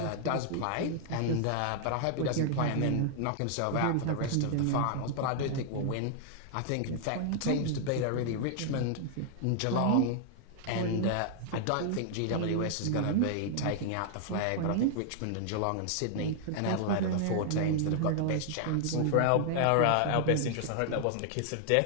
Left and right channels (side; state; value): both; different; correlation -0.01